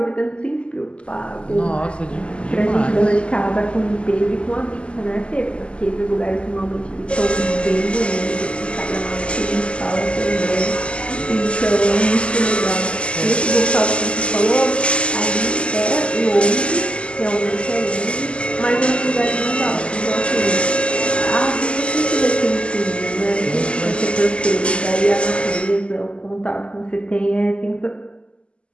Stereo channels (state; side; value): late; right; 0.054 ms